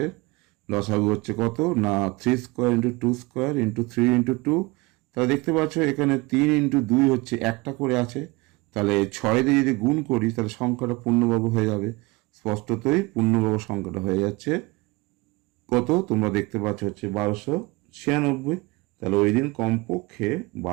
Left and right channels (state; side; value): quieter; left; 23.7 dB